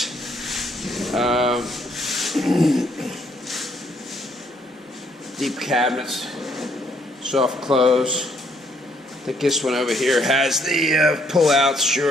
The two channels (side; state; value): both; normal; correlation 0.68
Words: Deep cabinets, soft close. I think this one over here has the pull-outs,